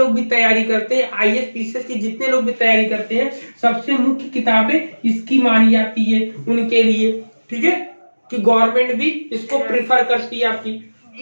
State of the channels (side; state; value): both; inverted; correlation -1.00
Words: भी तैयारी करते हैं, IAS PCS की जितने लोग भी तैयारी करते हैं, सबसे मुख्य किताबें इसकी मानी जाती है उनके लिए। ठीक है, कि गवर्नमेंट भी इसको प्रिफर करती है आपकी।